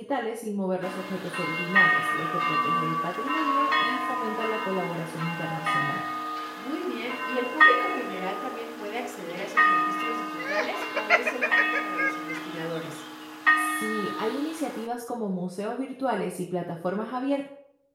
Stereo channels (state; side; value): identical; both; correlation 1.00